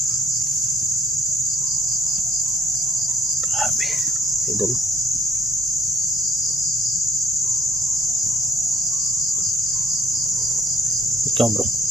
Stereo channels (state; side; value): normal; both; correlation 0.62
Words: Grabe idol. Ikaw bro,